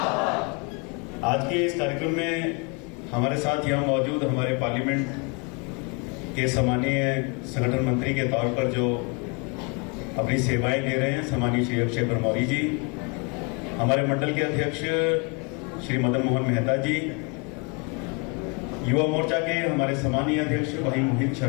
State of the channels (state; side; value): quieter; right; 32.3 dB